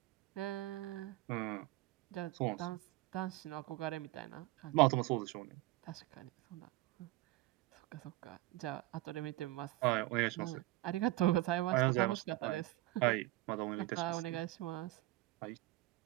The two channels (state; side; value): quieter; left; 18.3 dB